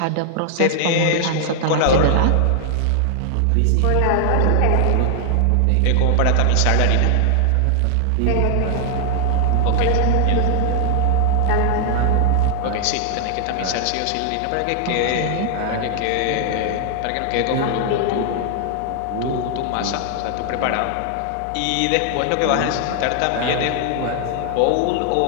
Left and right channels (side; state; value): both; different; correlation 0.00